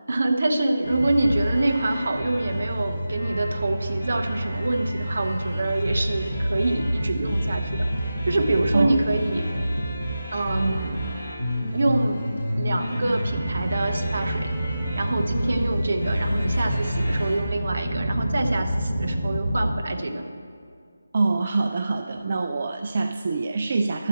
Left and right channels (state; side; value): inverted; both; correlation -0.93